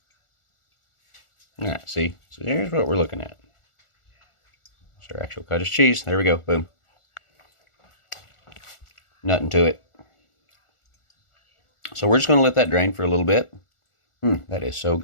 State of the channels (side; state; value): right; late; 1.4 ms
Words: All right, see, so here's what we're looking at. It's our actual cottage cheese. There we go, boom. Nothing to it. So we're just going to let that drain for a little bit. That is so